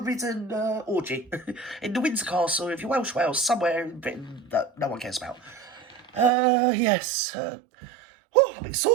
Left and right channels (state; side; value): drops out; left; at 6.3 s